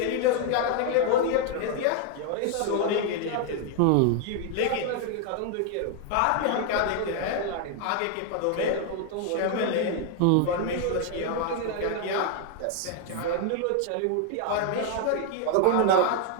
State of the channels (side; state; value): both; different; correlation 0.00